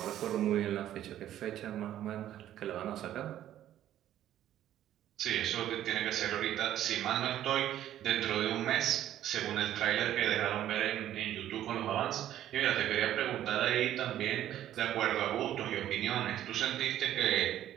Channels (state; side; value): quieter; left; 12.0 dB